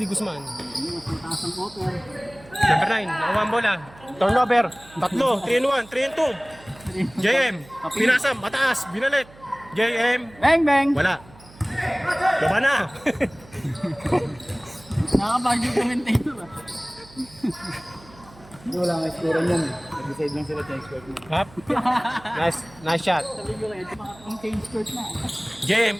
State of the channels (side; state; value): right; noise; hum, 23 dB below the sound